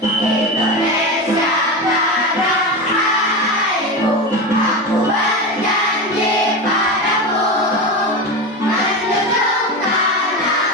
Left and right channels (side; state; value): both; normal; correlation 0.21